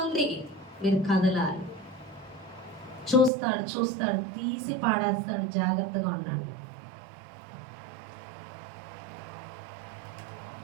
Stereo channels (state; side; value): drops out; left; at 3.3 s